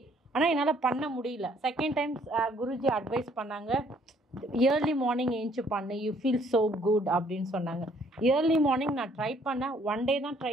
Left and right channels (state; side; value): normal; both; correlation 0.63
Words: ஆனால் என்னால் பண்ண முடியல. செகண்ட் டைம் குருஜி அட்வைஸ் பண்ணாங்க, ஏர்லி மார்னிங் ஏஞ்சி பண்ணு, யூ ஃபீல் ஸோ குட் அப்படின்னு சொன்னாங்க. ஏர்லி மார்னிங் நான் ட்ரை பண்ணேன். 1 டே தான் ட்ரை